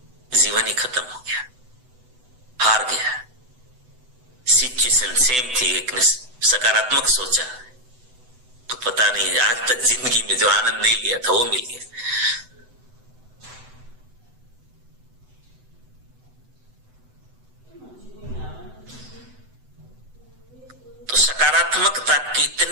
जीवन ही खत्म हो गया, हार गया। सिचुएशन सेम थी, एक ने सकारात्मक सोचा तो पता नहीं आज तक जिंदगी में जो आनंद नहीं लिया था वो मिल गया। तो सकारात्मकता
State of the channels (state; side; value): late; left; 7.9 ms